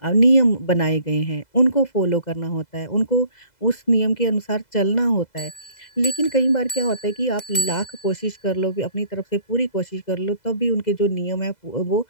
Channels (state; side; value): late; right; 2.0 ms